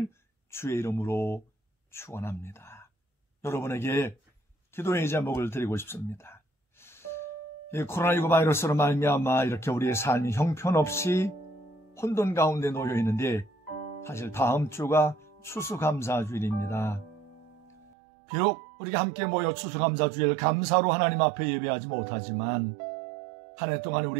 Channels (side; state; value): left; drops out; at 17.9 s